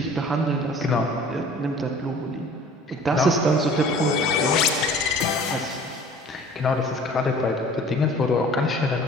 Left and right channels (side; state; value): both; normal; correlation 0.47